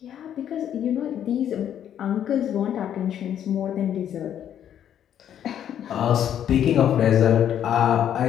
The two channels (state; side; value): quieter; right; 9.9 dB